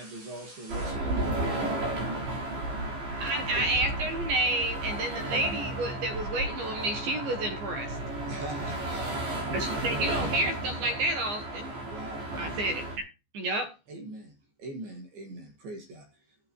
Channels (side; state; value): left; late; 15 ms